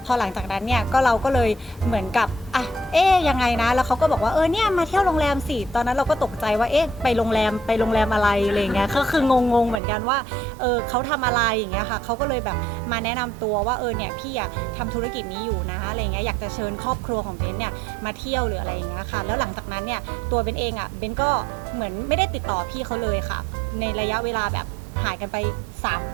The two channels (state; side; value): drops out; left; at 9.8 s